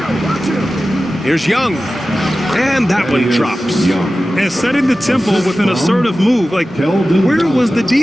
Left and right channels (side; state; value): both; normal; correlation 0.95